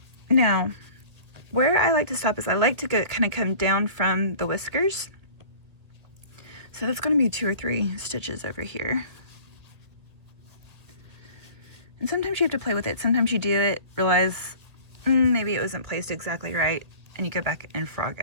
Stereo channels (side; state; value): left; late; 2.0 ms